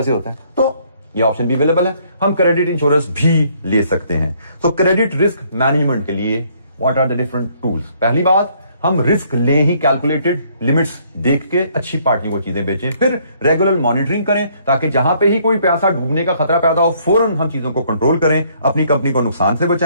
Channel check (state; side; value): inverted; both; correlation -0.65